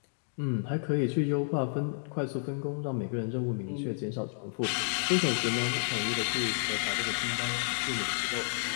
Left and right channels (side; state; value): right; silent; digital silence